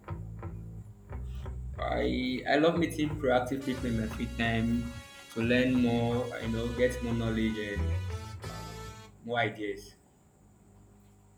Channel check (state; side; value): identical; both; correlation 1.00